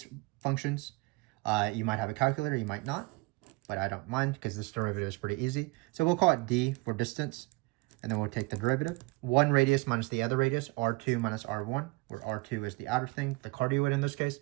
functions. You might have a calculator, you might not, but I don't mind because this derivative is pretty easy. So we'll call it d for distance, and then we'll take the derivative. One radius minus the other radius, r2 minus r1, where r2 is the outer thing, the cardioid in this case,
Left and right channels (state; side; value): quieter; left; 23.9 dB